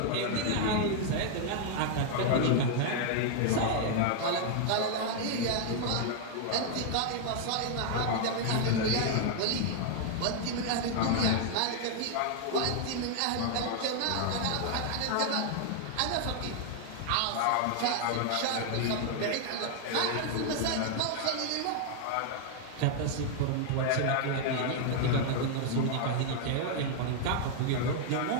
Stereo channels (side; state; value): both; different; correlation 0.00